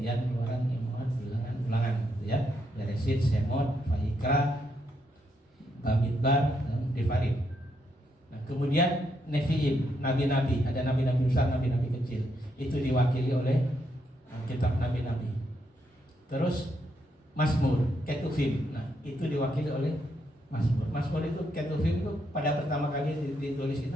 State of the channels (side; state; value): both; normal; correlation 0.78